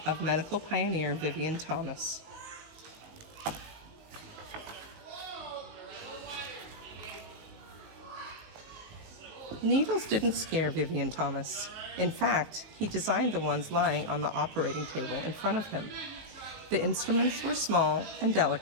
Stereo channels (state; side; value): late; left; 19 ms